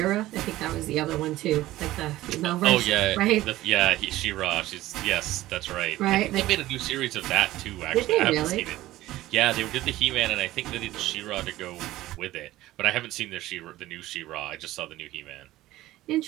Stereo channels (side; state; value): left; quieter; 16.1 dB